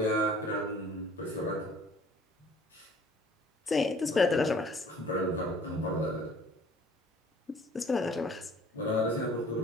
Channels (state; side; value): normal; both; correlation 0.53